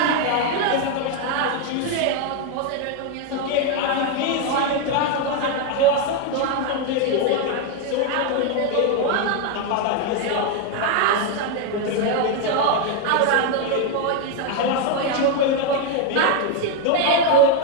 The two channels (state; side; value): different; both; correlation 0.01